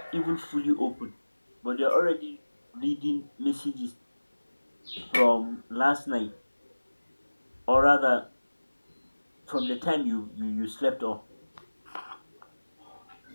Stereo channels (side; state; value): both; inverted; correlation -1.00